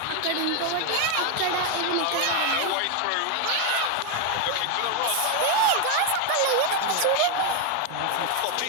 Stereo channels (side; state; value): both; different; correlation 0.01